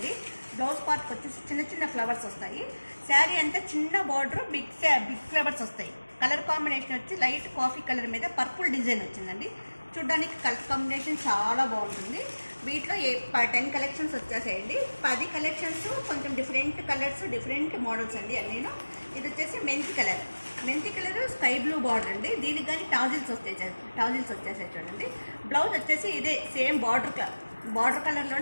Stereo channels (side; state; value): both; inverted; correlation -1.00